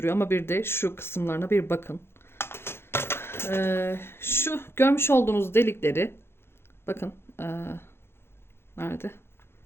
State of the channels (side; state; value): right; late; 0.12 ms